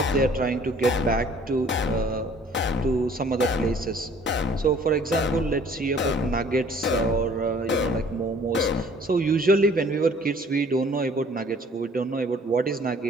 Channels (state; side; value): normal; both; correlation 0.55